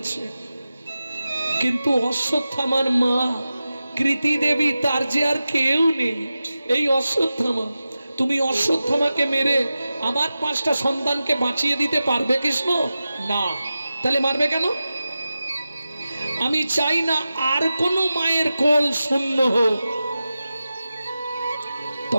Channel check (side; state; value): both; inverted; correlation -0.94